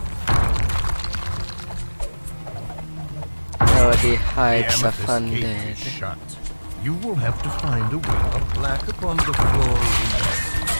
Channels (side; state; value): both; inverted; correlation -1.00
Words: Oh, the The heights of amethyst gate undead. is shut. You will have to find a way. A plaque upon the floor reads,